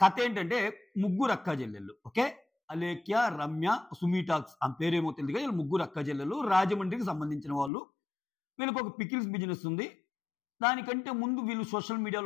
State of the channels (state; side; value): drops out; right; at 7.7 s